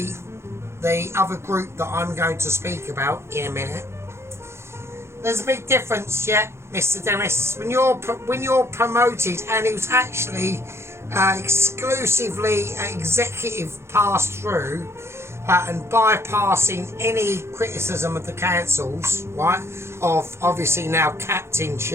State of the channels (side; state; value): left; late; 0.13 ms